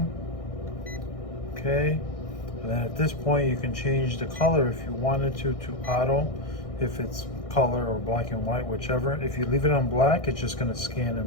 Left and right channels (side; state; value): right; late; 1.6 ms